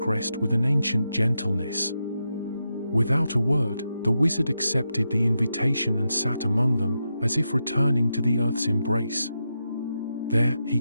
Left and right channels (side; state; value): both; inverted; correlation -0.87